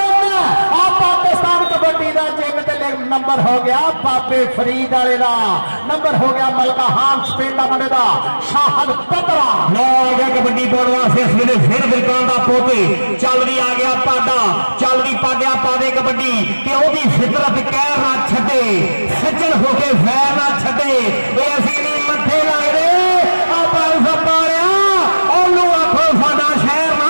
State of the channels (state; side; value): inverted; both; correlation -1.00